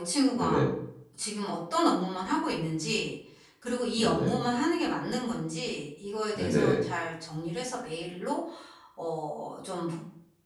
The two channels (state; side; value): identical; both; correlation 1.00